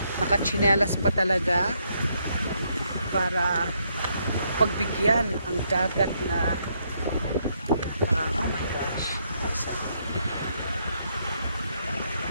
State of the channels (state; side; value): inverted; both; correlation -0.75